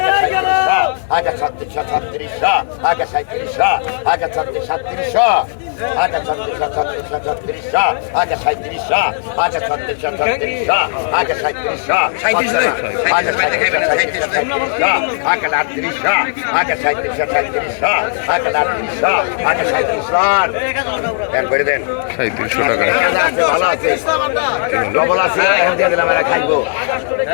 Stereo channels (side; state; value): right; silent; digital silence